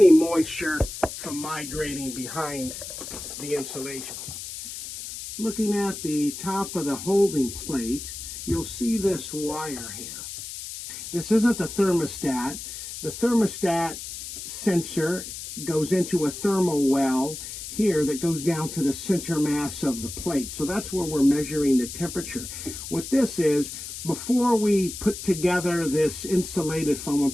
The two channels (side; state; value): left; noise; hiss, 9 dB below the sound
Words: moisture from migrating behind the insulation. Looking at the top of the holding plate, you'll see this wire here. This isn't the thermostat. The thermostat sensor goes into a thermal well here that goes down to the center mass of the plate. So that's where we're measuring the temperature. What this is, before we put together this insulated foam and